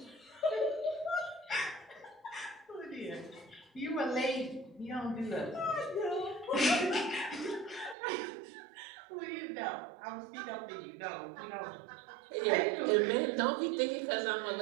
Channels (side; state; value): left; drops out; at 8.0 s